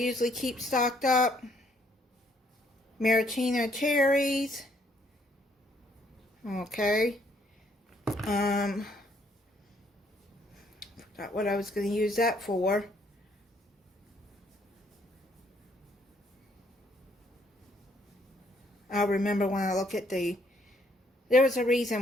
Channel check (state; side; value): normal; both; correlation 0.68